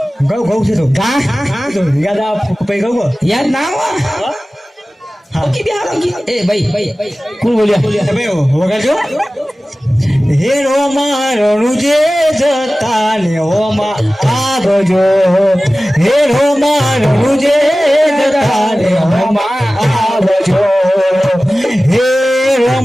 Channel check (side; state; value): both; normal; correlation 0.97